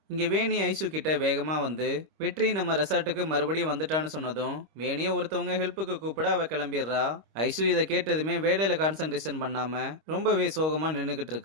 இங்க வேணி ஐசு கிட்ட வேகமா வந்து வெற்றி நம்ம ரெசார்ட்டுக்கு மறுபடியும் வந்துட்டான்னு சொன்னதும் வேணிய ஒருத்தவங்க ஹெல்ப்புக்கு கூப்பிட அவ கிளம்பிடுறா. ஐசு இதை கேட்டதுமே வேலையில கான்சென்ட்ரேஷன் பண்ணாம ரொம்பவே சோகமா நின்னுகிட்டு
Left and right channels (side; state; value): left; late; 26 ms